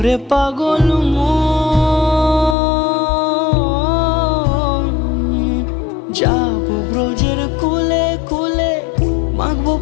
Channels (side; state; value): right; drops out; at 2.6 s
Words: পাগল যাব ব্রজের কুলে কুলে, মাখবো